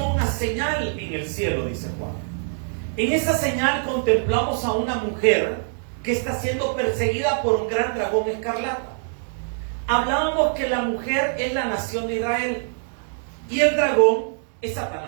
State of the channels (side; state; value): left; silent; digital silence